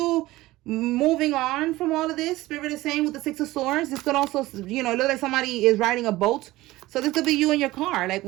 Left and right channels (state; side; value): quieter; left; 18.1 dB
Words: moving on from all of this. Spirit is saying with the Six of Swords, this could also, you know, look like somebody is riding a boat. So this could be you in your car. Like,